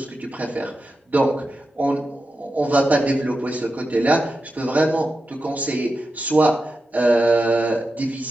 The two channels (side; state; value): both; normal; correlation 0.90